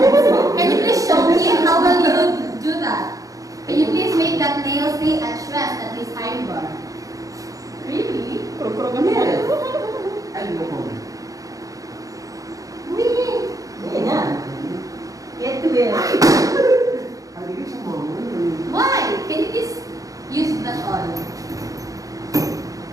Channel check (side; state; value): left; late; 0.17 ms